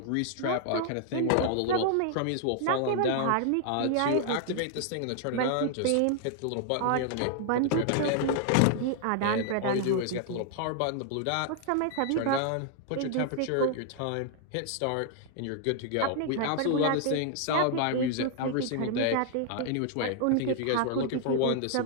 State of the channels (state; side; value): different; both; correlation 0.00